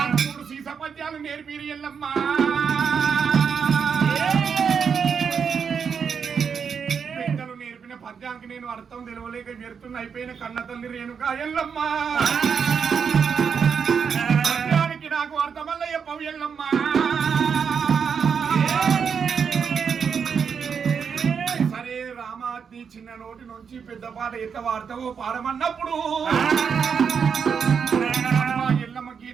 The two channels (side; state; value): left; quieter; 6.6 dB